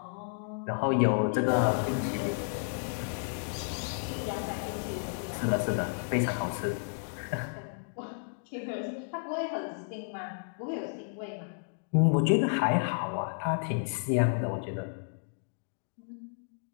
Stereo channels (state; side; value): silent; right; digital silence